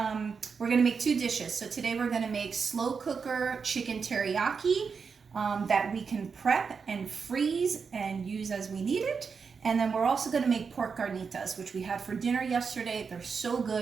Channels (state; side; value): quieter; left; 5.6 dB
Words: we're going to make two dishes. So today we're going to make slow cooker chicken teriyaki that we can prep and freeze and use as we need it. And then we're also going to make pork carnitas, which we had for dinner yesterday. They're so